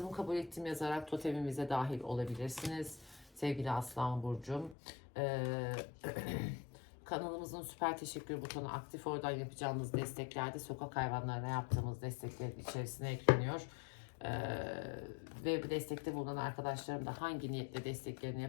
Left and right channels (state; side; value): drops out; right; at 4.8 s